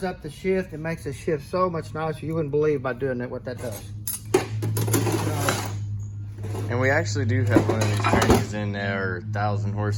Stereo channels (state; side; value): identical; both; correlation 1.00